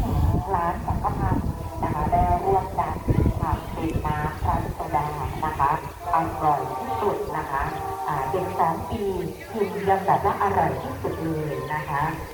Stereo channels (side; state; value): both; identical; correlation 1.00